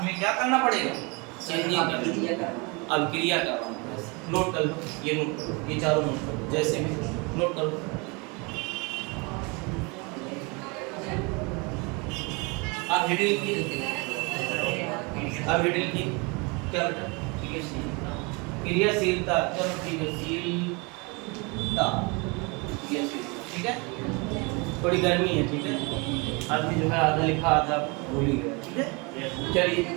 में क्या करना पड़ेगा? चेंजिंग करना, अभिक्रिया करना। नोट कर लो, ये नोट करो, ये चारों नोट करो, जैसे भी नोट कर लो। आप हेडिंग लिखिए, आप हेडिंग लिखिए क्या बेटा? ठीक है, क्रियाशीलता। चलो ठीक है, शीलता, ठीक है। थोड़ी गर्मी है, ठीक है, आदमी जो है आधा लिखा आधा भूल ही गया, ठीक है। चलिए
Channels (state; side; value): quieter; left; 29.2 dB